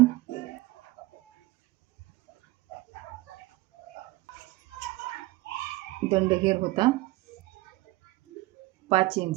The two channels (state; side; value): quieter; left; 19.8 dB